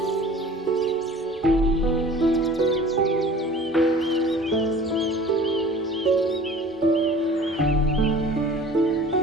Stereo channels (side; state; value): both; normal; correlation 0.45